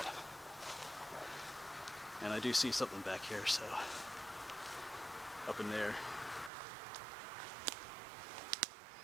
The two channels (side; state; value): left; drops out; at 6.5 s